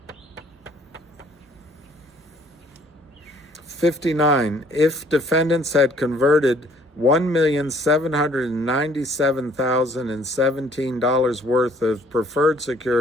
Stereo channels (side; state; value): both; normal; correlation 0.59